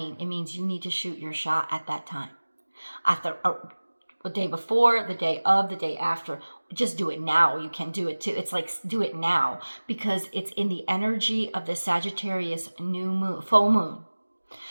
It means you need to shoot your shot at that time. At the day before, the day of, the day after. Just do it now. You can do it too. It's like, do it now, because it's in the energy of the Sagittarius new moon, full moon,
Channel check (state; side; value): inverted; both; correlation -1.00